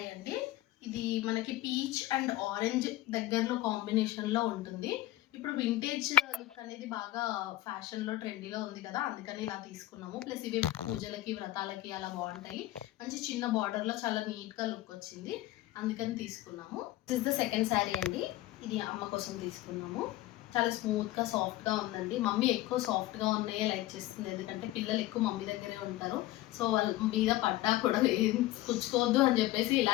అండి. ఇది మనకి పీచ్ అండ్ ఆరెంజ్ దగ్గరలో కాంబినేషన్లో ఉంటుంది. ఇప్పుడు వింటేజ్ లుక్ అనేది బాగా ఫ్యాషన్లో ట్రెండీలో ఉంది కదా, అందుకని ఇలా తీసుకున్నాము. ప్లస్ ఇవి పూజలకి వ్రతాలకి అలా బాగుంటాయి. మంచి చిన్న బార్డర్లో చాలా నీట్గా లుక్ వచ్చింది, అందుకని తీసుకున్నాము. This is the second sari అండి. ఇది అమ్మ కోసం తీసుకున్నాము. చాలా స్మూత్గా సాఫ్ట్గా ఉందండి. మమ్మీ ఎక్కువ సాఫ్ట్గా ఉన్నాయే లైక్ చేస్తుంది, ఎందుకంటే పిల్లలు ఎక్కువ మమ్మీ దగ్గరే ఉంటారు. సో వాళ్ళ మీద పడ్డా కూడా ఏం పుచ్చుకోవద్దు అని చెప్పేసి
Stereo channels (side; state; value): right; quieter; 16.3 dB